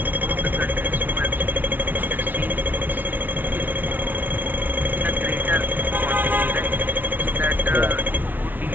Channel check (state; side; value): late; left; 0.085 ms